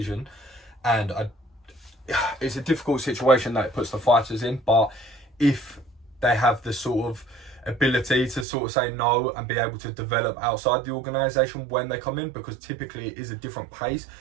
And it's a difficult situation that it puts the fighters in, but if they have the sort of ability to sort of say no and be able to develop outside the organisation when they come in, because typically it is a different pace,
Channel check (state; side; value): drops out; left; at 8.5 s